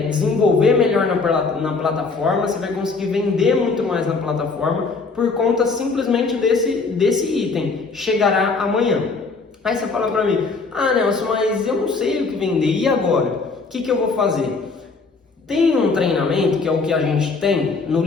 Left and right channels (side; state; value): right; quieter; 4.2 dB